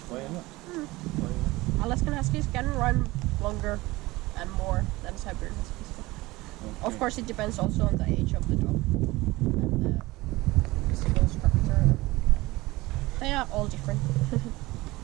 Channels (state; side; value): quieter; left; 20.3 dB